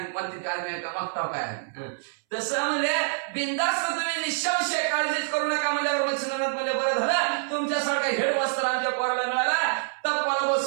म्हणते काय आम्ही का मागताव काय तसं म्हणजे बिंदास्त तुम्ही निःसंशय काळजीच करू नका म्हणजे मच्छिंद्रनाथ म्हणजे बरं झालं तुमच्यासारखा हेडमास्टर आमच्या पोराला मिळाला तपाला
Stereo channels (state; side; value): silent; left; 61 dB below the other